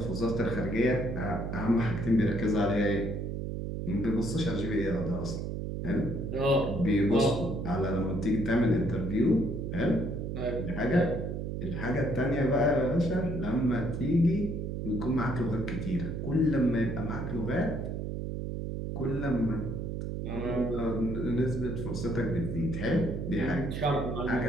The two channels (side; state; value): right; noise; hum, 4 dB below the sound